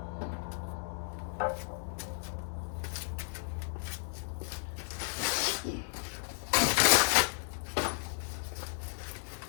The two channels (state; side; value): silent; right; digital silence